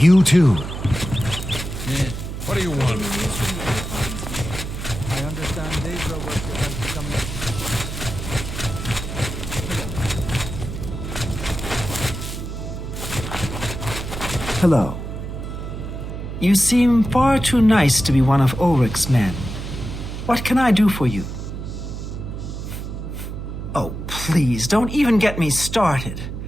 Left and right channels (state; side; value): noise; right; hum, 7 dB below the sound